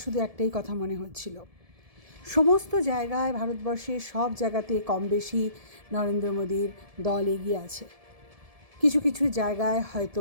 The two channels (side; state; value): left; late; 1.7 ms